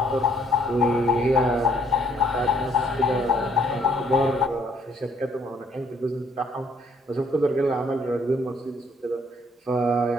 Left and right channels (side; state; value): both; normal; correlation 0.64